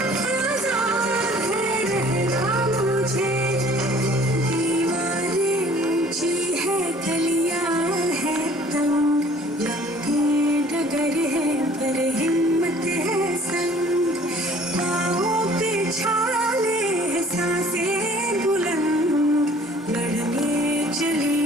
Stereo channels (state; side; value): normal; both; correlation 0.53